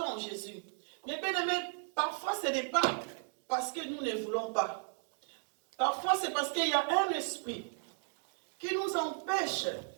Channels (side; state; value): left; silent; 54 dB below the other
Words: Jésus, mais bien aimé, parfois ce n'est pas parce que nous ne voulons pas. Parfois c'est parce qu'il y a un esprit qui nous empêche